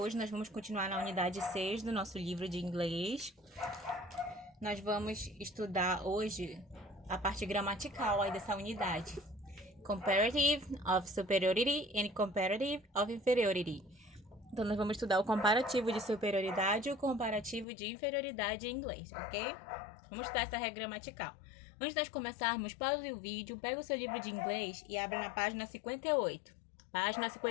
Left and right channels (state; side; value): drops out; right; at 17.7 s